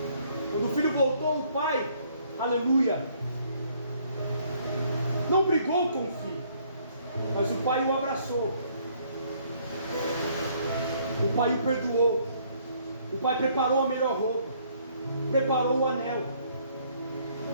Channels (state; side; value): inverted; both; correlation -0.64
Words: Quando o filho voltou, o pai, aleluia, não brigou com o filho, mas o pai o abraçou, o pai o perdoou, o pai preparou a melhor roupa, preparou o anel,